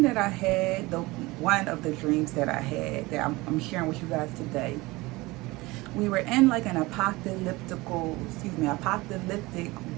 that I had, one of the dreams that I had that I'm sharing with you guys today, we were in like an apocalyptic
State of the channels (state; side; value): quieter; left; 21.7 dB